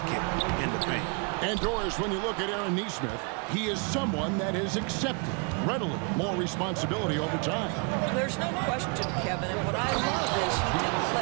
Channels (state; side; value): quieter; left; 35.9 dB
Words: in the paint. And Doris, when you look at Aaron Nesmith, he is someone that has accepted readily more responsibility over time. There's no question, Kevin, and what I love is he didn't